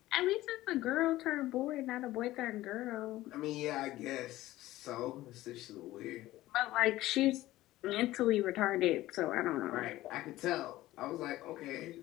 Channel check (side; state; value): right; quieter; 16.3 dB